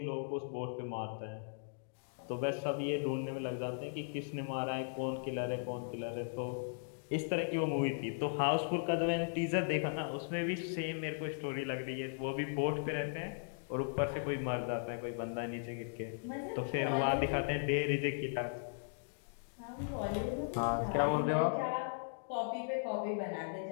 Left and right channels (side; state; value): right; silent; digital silence